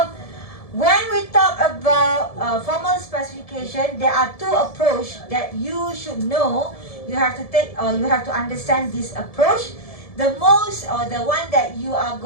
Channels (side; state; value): right; late; 1.7 ms